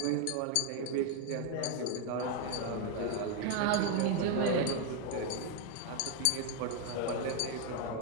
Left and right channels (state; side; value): different; both; correlation 0.01